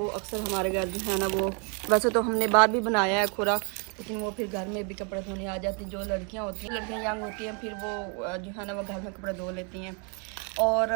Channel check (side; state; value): left; quieter; 36.8 dB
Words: अक्सर हमारे घर जो है ना वो, वैसे तो हमने बाहर भी बनाया है खुरा, लेकिन वो फिर घर में भी कपड़े धोने आ जाती हैं। जो लड़कियाँ होती हैं, लड़कियाँ यंग होती हैं, फिर वो जो है ना वो घर में कपड़े धो लेती हैं। और